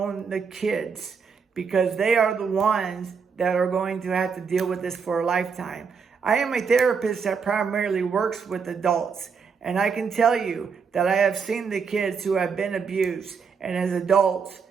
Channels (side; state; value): left; quieter; 5.8 dB